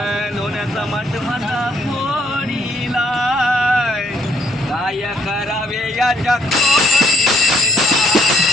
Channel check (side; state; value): both; normal; correlation 0.67